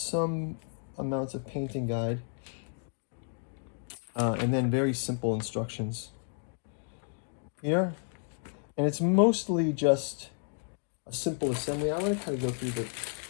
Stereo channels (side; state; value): right; silent; 57 dB below the other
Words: amounts of painting guide. And then very simple instructions here. And it's mostly just a simple assembly. I want to kind of go through the